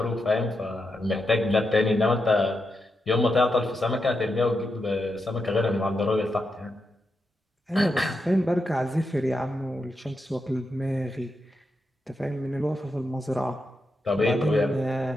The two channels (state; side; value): normal; both; correlation 0.85